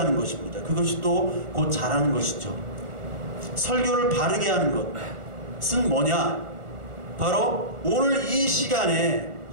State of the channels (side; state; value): left; late; 1.4 ms